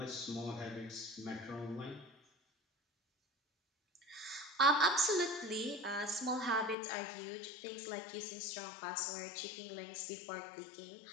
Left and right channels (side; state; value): right; drops out; at 6.8 s